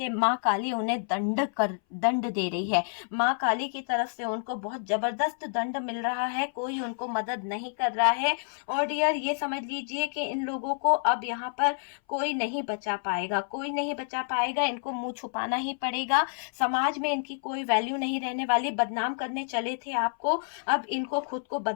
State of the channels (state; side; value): silent; right; 59 dB below the other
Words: माँ काली उन्हें दंड दे रही है। माँ काली की तरफ से उनको बहुत जबरदस्त दंड मिल रहा है, कोई उनको मदद नहीं कर रहा है। और डियर ये समझ लीजिए कि इन लोगों को अब यहाँ पर कोई नहीं बचा पाएगा, कोई नहीं बचा पाएगा। इनको मुंह छुपाना ही पड़ेगा, समाज में इनकी कोई वैल्यू नहीं रहने वाली। बदनाम करने चले थे आपको, अब इनको खुद को